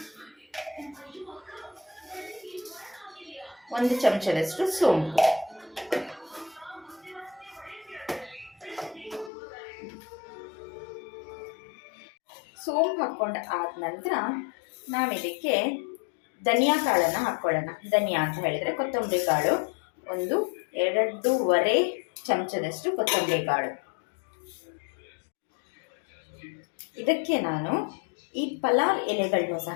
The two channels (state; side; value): drops out; right; at 9.3 s